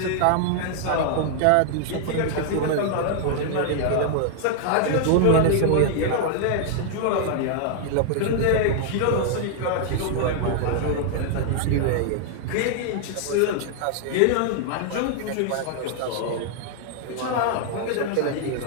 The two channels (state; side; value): different; both; correlation 0.00